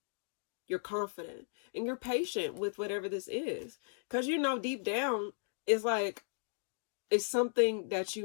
You're confident. And you're patient with whatever this is. Because deep down, it's like, it's something that you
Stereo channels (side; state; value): right; silent; digital silence